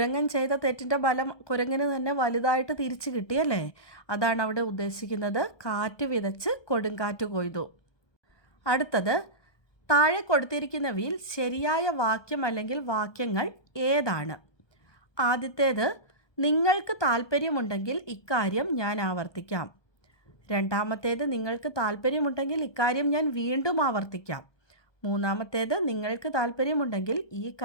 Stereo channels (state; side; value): late; right; 1.2 ms